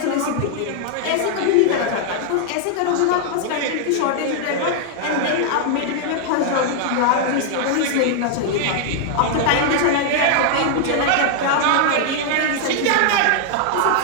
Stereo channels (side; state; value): both; different; correlation 0.00